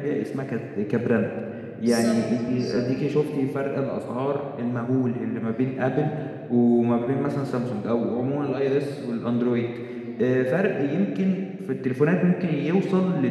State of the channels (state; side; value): identical; both; correlation 1.00